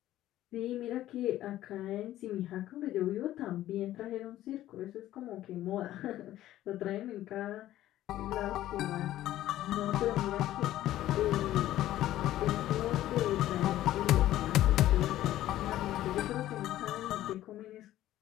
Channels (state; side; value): quieter; right; 13.9 dB